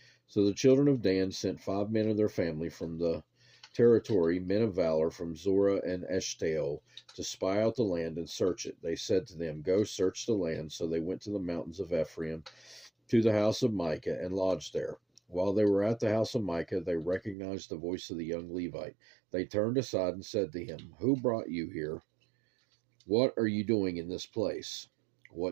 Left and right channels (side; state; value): left; drops out; at 17.4 s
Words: So the children of Dan sent 5 men of their family from the territory, men of valor from Zorah and Eshtaol, to spy out the land and search it. They said to them, "Go search the land." So they went to the mountains of Ephraim, to the house of Micah, and lodged there. While they were at the house of Micah, they recognized the voice of the young Levite. They turned aside and said to him, "Who brought you here? What are you doing in this place?